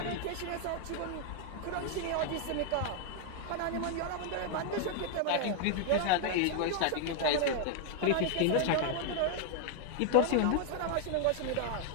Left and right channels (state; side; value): different; both; correlation 0.00